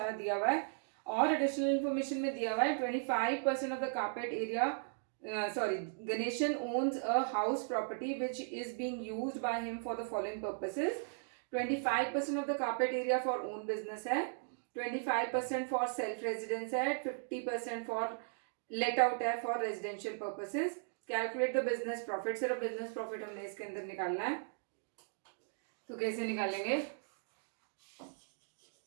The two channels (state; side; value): silent; left; digital silence